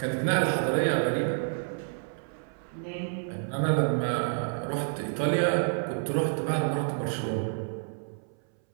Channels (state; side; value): silent; left; 58 dB below the other